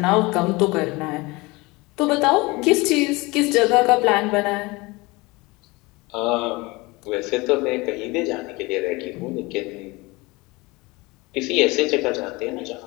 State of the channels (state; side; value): quieter; right; 23.5 dB